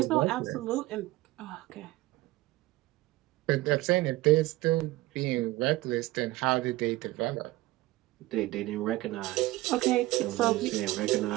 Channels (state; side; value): quieter; left; 18.4 dB